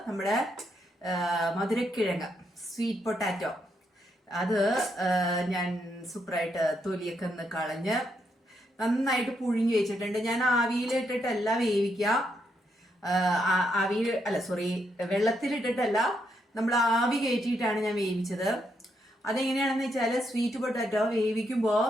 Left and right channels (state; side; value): normal; both; correlation 0.78